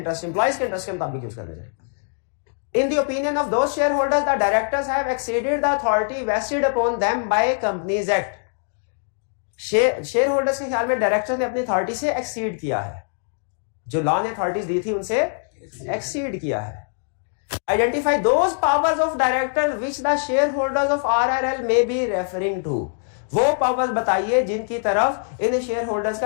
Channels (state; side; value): silent; right; digital silence